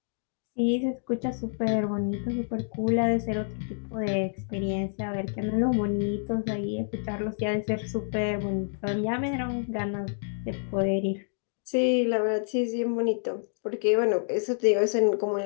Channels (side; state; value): right; silent; digital silence